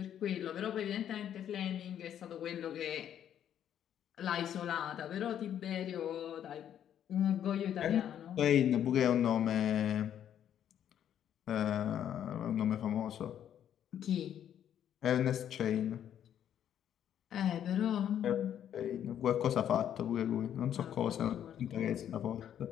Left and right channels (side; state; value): right; quieter; 10.0 dB